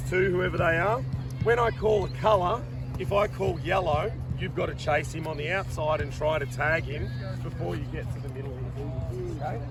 two, whoever they are. When I call a colour, if I call yellow, you've got to chase him on the outside and try to tag him before you get to the middle. Okay?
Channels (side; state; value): both; identical; correlation 1.00